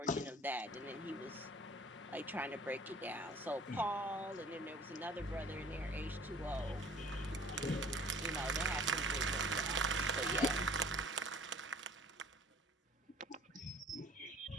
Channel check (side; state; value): both; normal; correlation 0.51